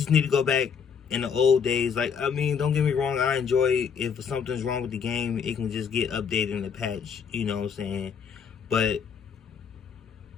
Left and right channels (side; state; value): right; quieter; 6.8 dB